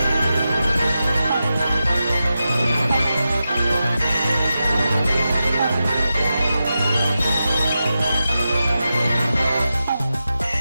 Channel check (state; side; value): inverted; both; correlation -0.90